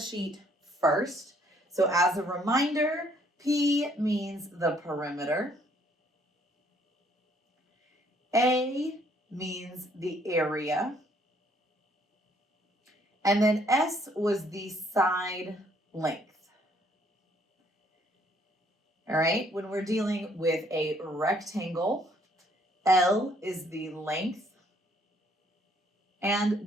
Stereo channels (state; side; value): normal; both; correlation 0.65